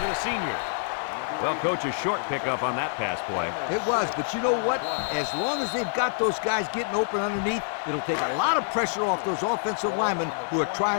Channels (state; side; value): silent; right; 55 dB below the other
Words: to the senior. Well, coach, a short pickup on that pass play. It was, but you know what? As long as they've got those guys getting open underneath, it'll take a lot of pressure off those offensive linemen who are